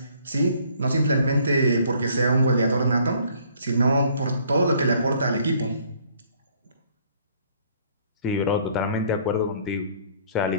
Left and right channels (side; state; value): both; inverted; correlation -0.61